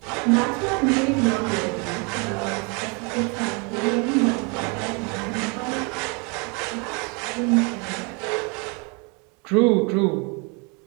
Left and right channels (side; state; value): left; quieter; 32.6 dB